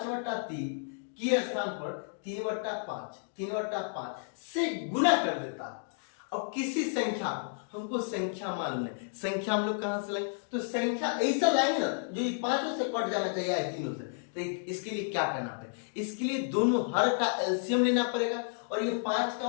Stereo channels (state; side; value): silent; right; digital silence